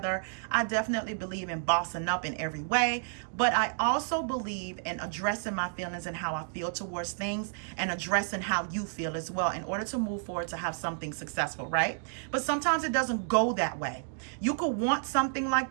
I definitely believe in bossing up in every way. But I also believe in addressing my feelings and how I feel towards things, and addressing how you feel as well, in order to move forward to have something successful, right? But sometimes it doesn't go that way. You could want something like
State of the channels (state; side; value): silent; left; digital silence